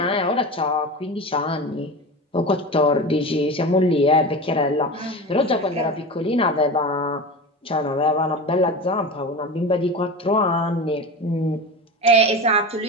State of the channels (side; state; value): both; normal; correlation 0.28